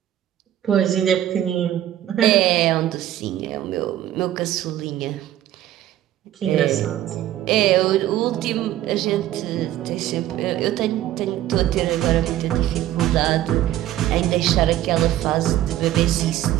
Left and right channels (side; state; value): left; quieter; 13.0 dB